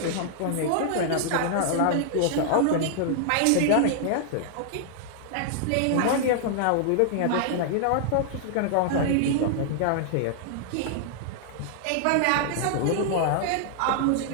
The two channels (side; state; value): both; different; correlation -0.01